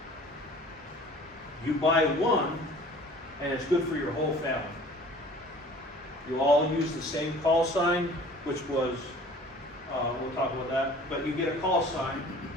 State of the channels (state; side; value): normal; both; correlation 0.48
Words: you buy one, and it's good for your whole family. You all use the same call sign, which was, we'll talk about that, but you get a call sign,